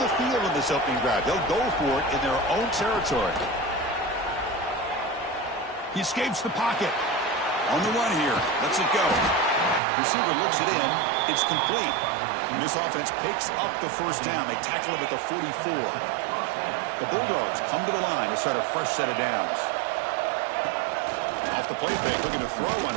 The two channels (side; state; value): left; drops out; at 9.8 s